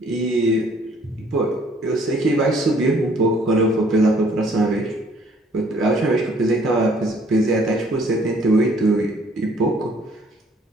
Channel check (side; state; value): both; normal; correlation 0.60